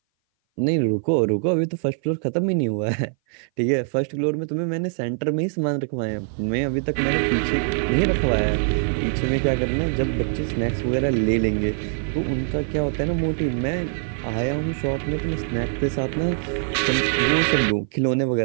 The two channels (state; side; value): silent; left; 58 dB below the other